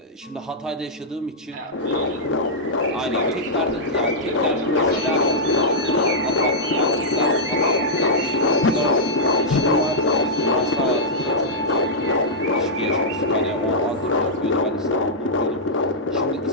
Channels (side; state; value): both; normal; correlation -0.09